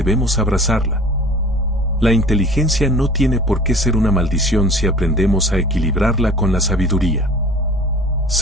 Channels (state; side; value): normal; both; correlation 0.45